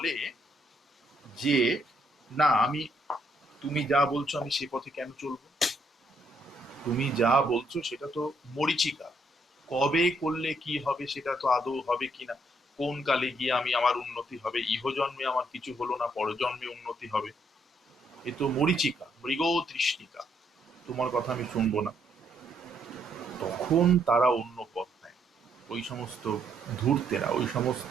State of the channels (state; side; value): normal; both; correlation 0.73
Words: যে না, তুমি যা বলছো আমি সে পথে কেন চলবো, তুমি যা বলছো সেটা তো মরীচিকা, কবে করলে কি হবে সেটা তো আদৌ হবে কিনা, কোন কালে গিয়ে আমার উন্নতি হবে, ইহজন্মে আমার কিছু হলো না, পরজন্মে উন্নতি হবে, এ তো মরীচিকা, মৃগ তৃষ্ণিকা, তোমার কথা আমি শুনবো না। তখন তারা অন্য পথ নেয়, ওই সমস্ত ধূর্তেরা, ওই